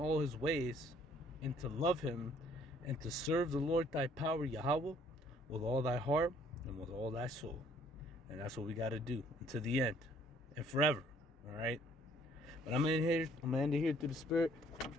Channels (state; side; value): normal; both; correlation 0.61